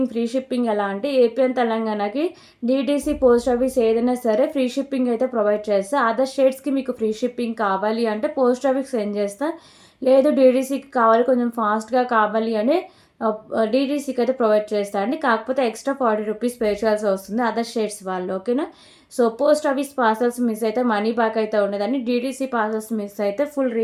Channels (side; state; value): both; identical; correlation 1.00